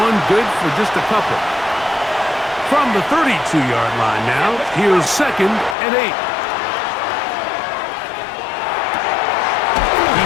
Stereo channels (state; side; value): drops out; right; at 5.8 s